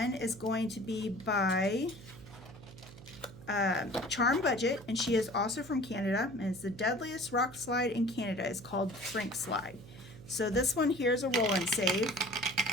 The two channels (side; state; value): right; noise; hum, 18 dB below the sound